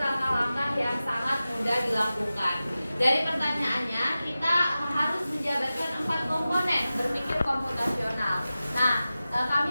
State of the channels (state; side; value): inverted; both; correlation -0.95